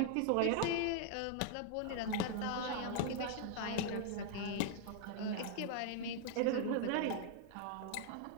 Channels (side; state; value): both; different; correlation 0.00